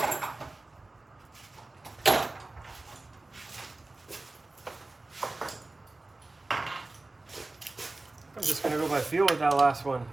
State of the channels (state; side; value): quieter; left; 3.0 dB